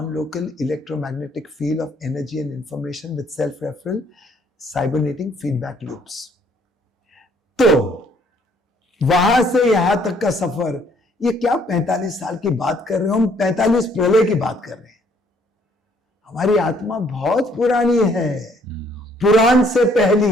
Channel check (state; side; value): normal; both; correlation 0.64